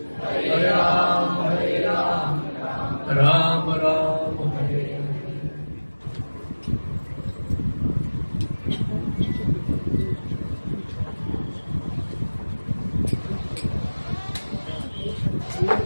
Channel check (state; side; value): inverted; both; correlation -1.00